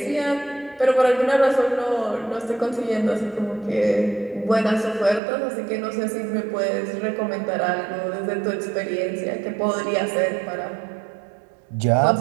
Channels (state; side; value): drops out; left; at 5.2 s